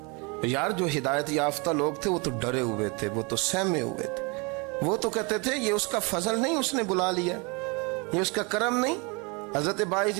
یار جو ہدایت یافتہ لوگ تھے وہ تو ڈرے ہوئے تھے، وہ تو سہمے ہوئے تھے، وہ تو کہتے تھے یہ اس کا فضل نہیں، اس نے بلا لیا، یہ اس کا کرم نہیں۔ حضرت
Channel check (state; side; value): quieter; left; 30.3 dB